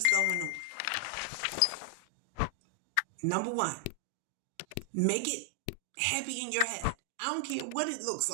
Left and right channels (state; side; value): different; both; correlation 0.00